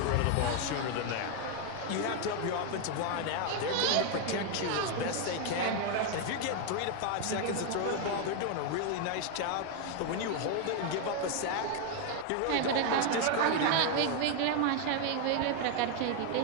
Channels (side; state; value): both; different; correlation 0.01